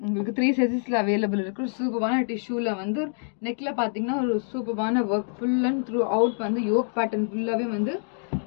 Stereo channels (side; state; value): right; silent; digital silence